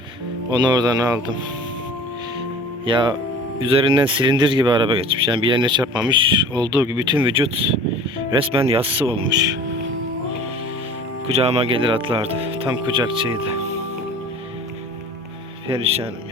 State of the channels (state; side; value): normal; both; correlation 0.43